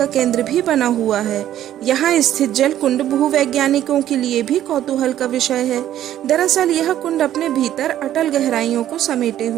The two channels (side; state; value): left; quieter; 12.0 dB